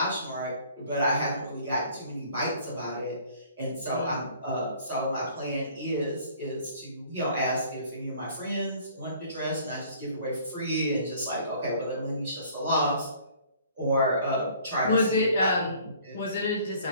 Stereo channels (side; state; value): both; inverted; correlation -0.54